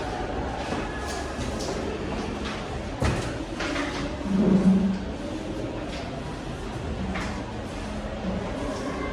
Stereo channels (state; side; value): identical; both; correlation 1.00